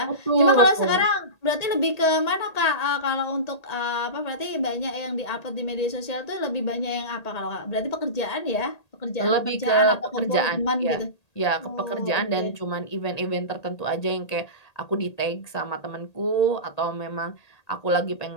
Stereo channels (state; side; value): late; right; 1.8 ms